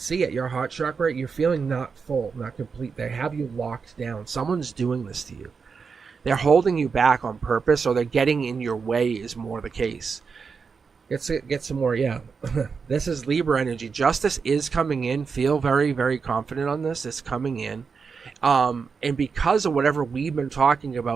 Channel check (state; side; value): quieter; left; 5.4 dB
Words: it. Your heart chakra, you're feeling not full, not complete. They have you locked down. Someone's doing this to you. They're holding you back on purpose, or they're getting in your way is more the case. Get some more, yeah. This is Libra energy. Justice is coming in. Feel very, very confident on this. It's coming in. And because of whatever we've been talking